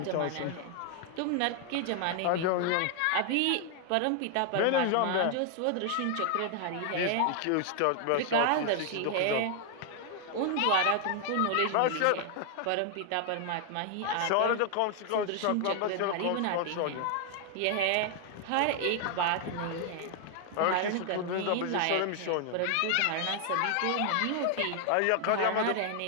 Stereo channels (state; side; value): different; both; correlation 0.00